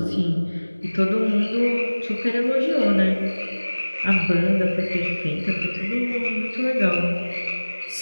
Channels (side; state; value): both; inverted; correlation -1.00